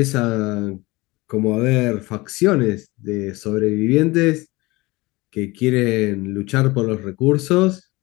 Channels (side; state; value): right; quieter; 22.2 dB